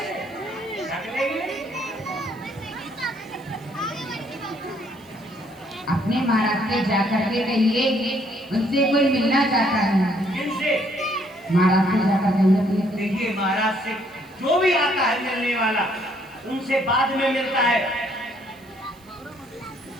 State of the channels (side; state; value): right; noise; hiss, 29 dB below the sound